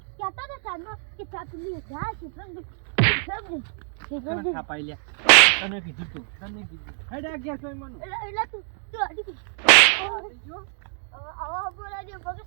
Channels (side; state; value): left; silent; 57 dB below the other